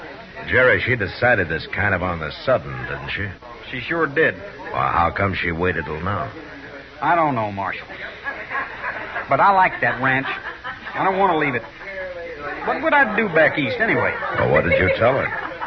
Jerry, she decided this kind of on the sudden, didn't she? She sure did. Well, how come she waited till now? I don't know, Marshal. But I like that ranch. I don't want to leave it. What would I do back east, anyway? Well, what did you tell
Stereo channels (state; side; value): identical; both; correlation 1.00